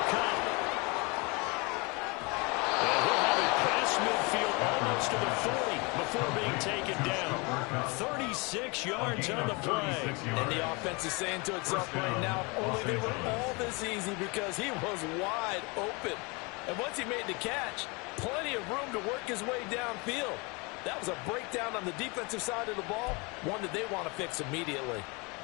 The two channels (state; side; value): quieter; right; 28.6 dB